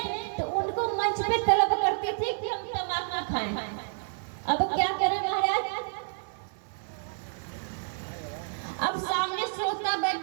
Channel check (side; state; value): left; silent; 58 dB below the other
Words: तो उनको मंच पे तलब करते थे कि हम तमाकू खाएं। अब क्या करें महाराज, अब सामने श्रोता